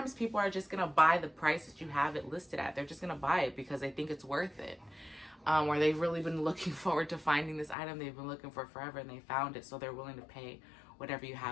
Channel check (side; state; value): right; drops out; at 7.8 s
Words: people are just going to buy the price that you have it listed at. They're just going to buy it because they think it's worth it. where they've really been looking forward to finding this item they've been looking for forever, and they found it, so they're willing to pay whatever you